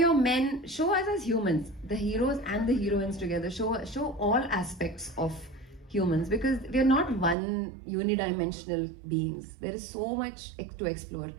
your men, show us as humans, the heroes and the heroines together. Show all aspects of humans, because we are not one unidimensional beings. There is so much to explore.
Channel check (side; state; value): left; drops out; at 7.4 s